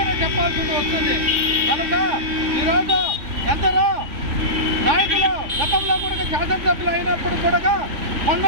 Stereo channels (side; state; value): left; late; 3.4 ms